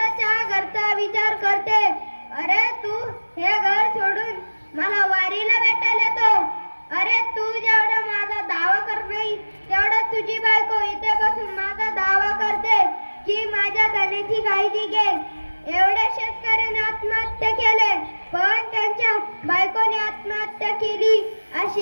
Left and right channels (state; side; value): inverted; both; correlation -1.00